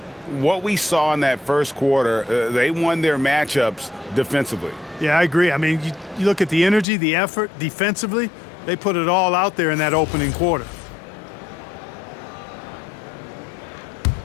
What we saw in that first quarter, they won their matchups defensively. Yeah, I agree. I mean, you look at the energy, the effort defensively, they put it all out there in that opening quarter.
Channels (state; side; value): drops out; right; at 6.9 s